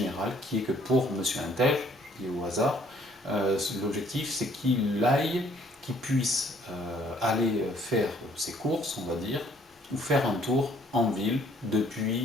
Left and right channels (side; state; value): both; normal; correlation 0.62